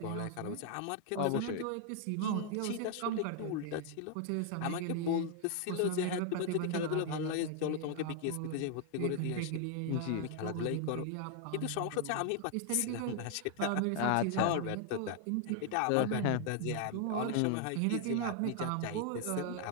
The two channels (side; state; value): both; different; correlation 0.00